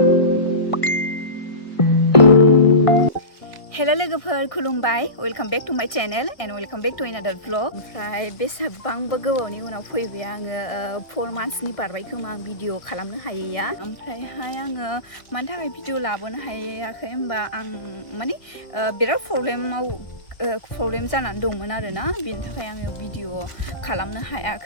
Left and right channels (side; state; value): right; late; 1.6 ms